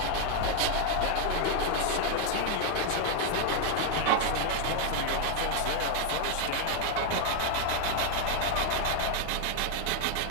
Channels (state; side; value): different; both; correlation 0.00